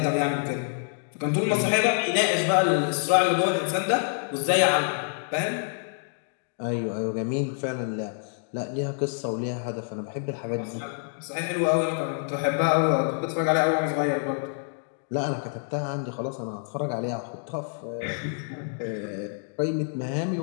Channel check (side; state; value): right; silent; digital silence